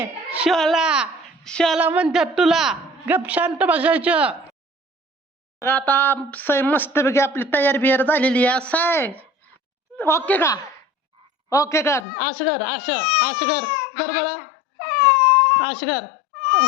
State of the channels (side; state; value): right; drops out; at 12.1 s